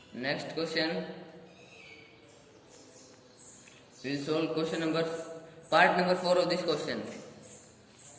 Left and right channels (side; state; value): both; identical; correlation 1.00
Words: next question, we will solve part number 4 of this question.